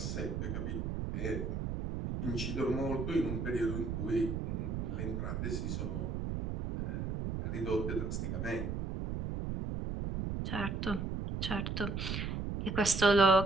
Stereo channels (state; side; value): noise; right; rumble, 2 dB below the sound